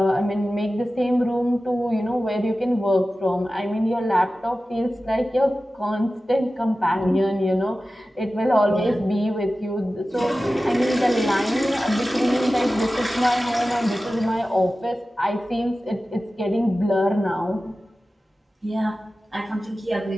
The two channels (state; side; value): normal; both; correlation 0.95